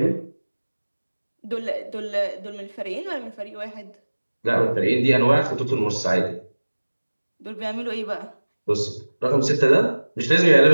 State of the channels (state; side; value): inverted; both; correlation -1.00